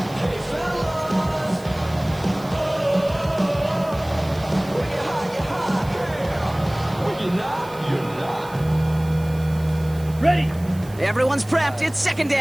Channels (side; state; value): right; noise; hiss, 22 dB below the sound